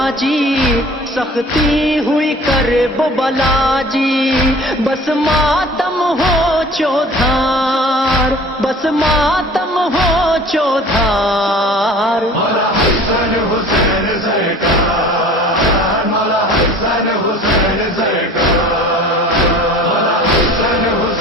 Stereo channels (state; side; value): normal; both; correlation 0.45